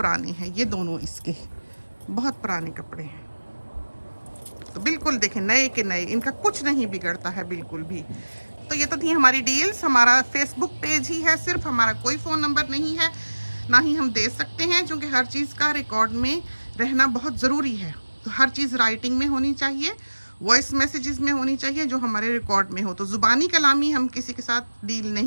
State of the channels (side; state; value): both; inverted; correlation -1.00